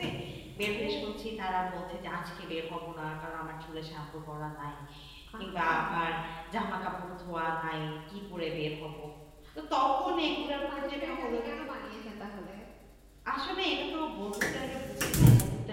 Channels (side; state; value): both; identical; correlation 1.00